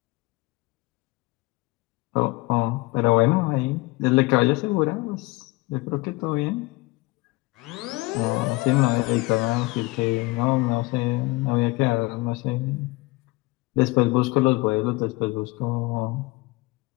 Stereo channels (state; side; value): quieter; right; 22.6 dB